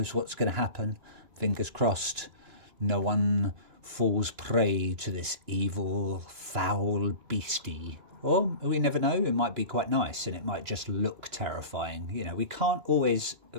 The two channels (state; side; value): late; left; 2.9 ms